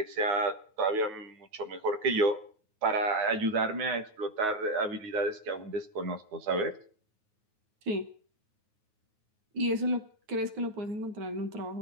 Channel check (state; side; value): late; left; 9.4 ms